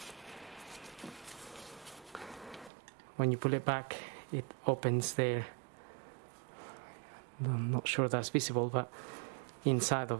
When you pull it back, it opens there. I'm not sure that's visible, but inside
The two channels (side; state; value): left; drops out; at 2.7 s